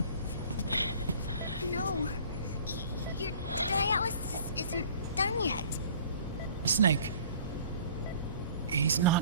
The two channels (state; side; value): inverted; both; correlation -0.50